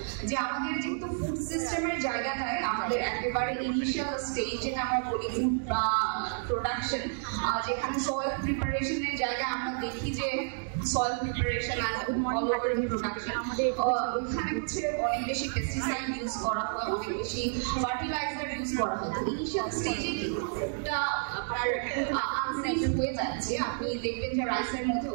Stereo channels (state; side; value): silent; left; digital silence